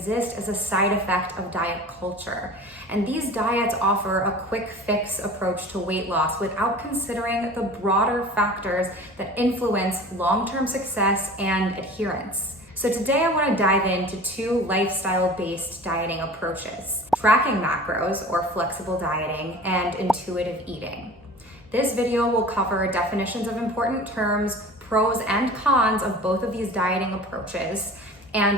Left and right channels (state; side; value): normal; both; correlation 0.40